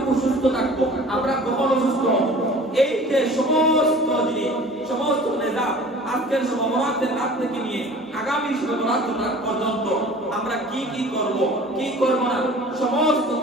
সুস্থ থাকবো আমরা কখন অসুস্থ হব এই যে সমস্ত জিনিস সমস্ত নিজাম আজকের শবে বরাতের রাত থেকে নিয়ে আগামী শবে বরাতের রাত পর্যন্ত আমরা কি কি করব কি করব না সমস্ত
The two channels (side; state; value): both; normal; correlation 0.45